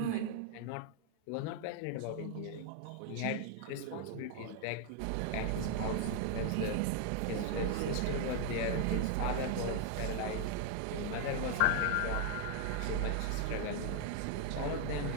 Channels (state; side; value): different; both; correlation 0.00